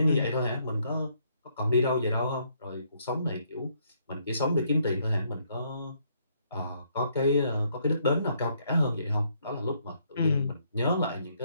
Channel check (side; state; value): both; inverted; correlation -0.71